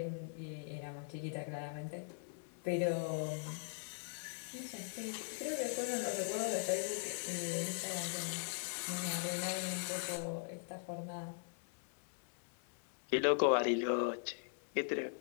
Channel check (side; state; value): right; silent; 51 dB below the other